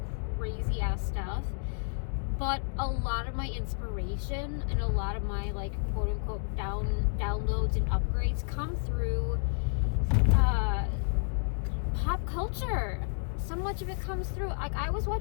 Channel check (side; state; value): right; silent; 57 dB below the other